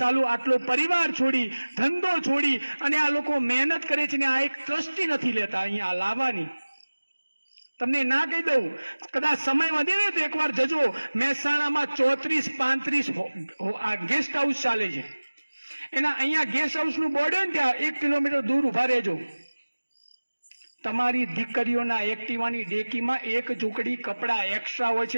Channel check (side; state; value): both; inverted; correlation -1.00